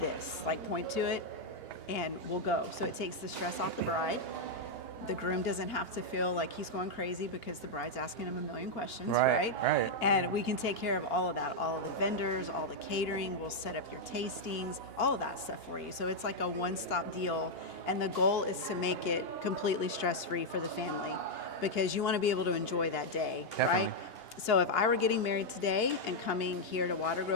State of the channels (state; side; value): late; right; 2.8 ms